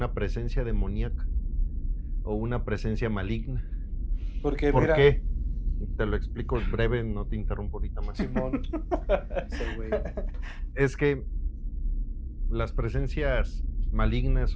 presencia demoníaca o una presencia maligna. Porque ¿Por mira, qué? Te lo explico breve, no te interrumpo ahorita más. Simón, ese güey. Es que las presencias malignas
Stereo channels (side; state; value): both; identical; correlation 1.00